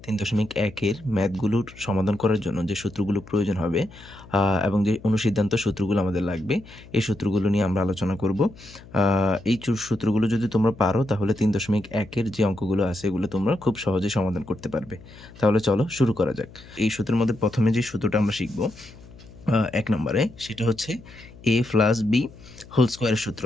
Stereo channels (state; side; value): noise; left; hum, 20 dB below the sound